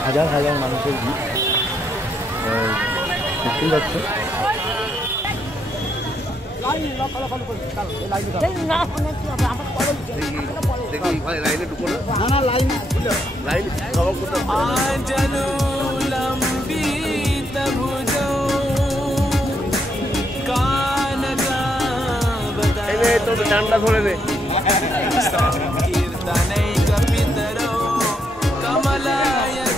হাজার হাজার মানুষের ভিড় দেখতেই পাচ্ছে। ডান্ডা ধরে দে।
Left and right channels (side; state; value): both; normal; correlation 0.76